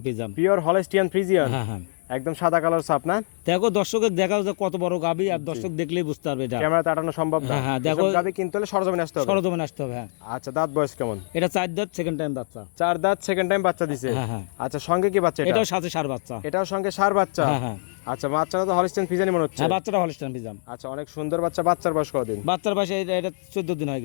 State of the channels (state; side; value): silent; right; digital silence